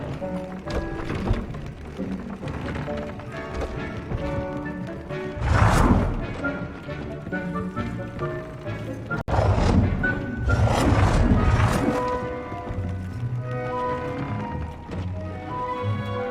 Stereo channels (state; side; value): identical; both; correlation 1.00